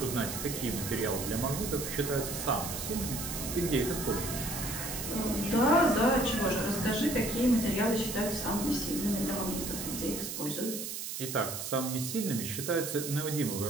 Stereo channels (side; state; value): right; noise; hiss, 5 dB below the sound